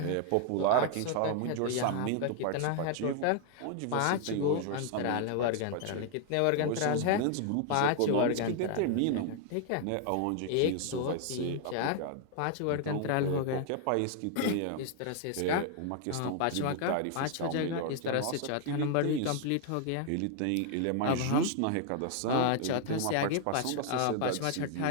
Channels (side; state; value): both; different; correlation 0.00